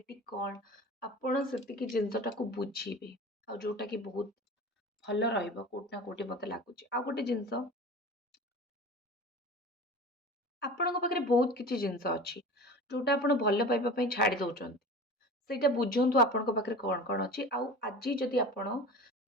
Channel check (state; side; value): normal; both; correlation 0.36